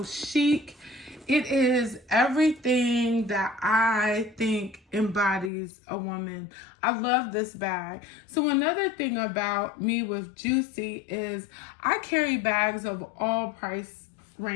chic. It is everything that I think embodies a woman. I love this bag. So another thing about me with Juicy is I carry bags of all price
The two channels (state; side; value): drops out; right; at 5.5 s